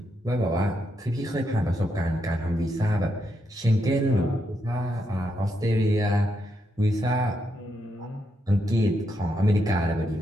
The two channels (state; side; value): normal; both; correlation 0.81